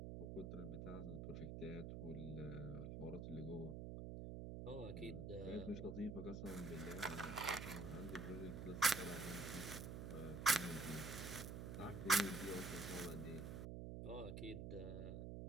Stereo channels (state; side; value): noise; right; hum, 5 dB below the sound